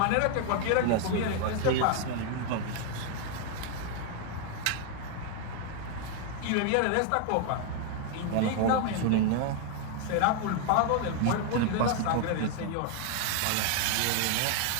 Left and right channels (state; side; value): different; both; correlation 0.00